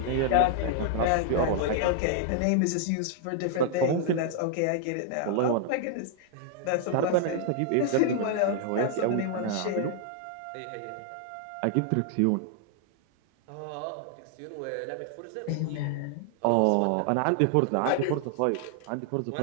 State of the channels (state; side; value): different; both; correlation 0.00